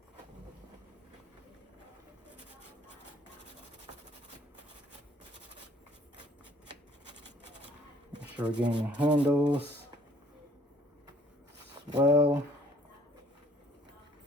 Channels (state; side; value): normal; both; correlation 0.58